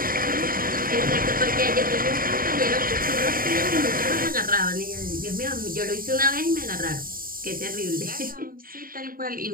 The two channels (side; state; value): left; late; 0.41 ms